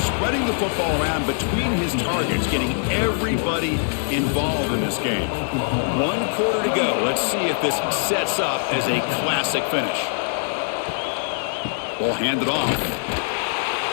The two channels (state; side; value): silent; right; digital silence